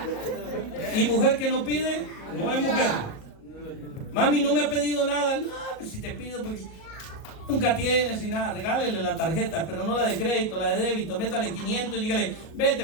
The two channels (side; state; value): right; late; 38 ms